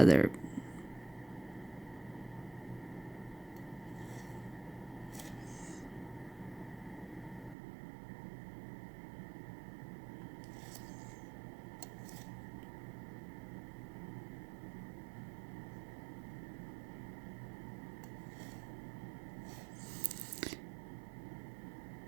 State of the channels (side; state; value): left; drops out; at 7.6 s